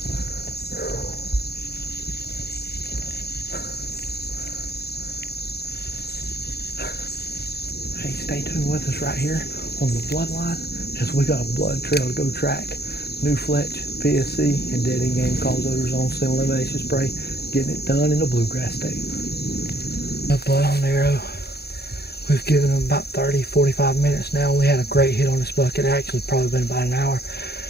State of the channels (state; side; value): late; right; 0.47 ms